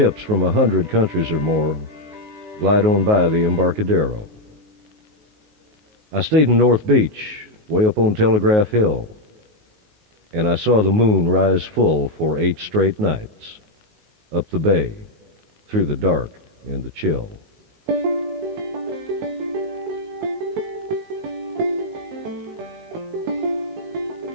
from 100 countries or more glide on by the Embarcadero. I stayed in North Beach, way up on Telegraph Hill, and I saw the moon rise full for 8 straight nights, up the bay, through the dark and the chill.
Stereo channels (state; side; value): late; left; 19 ms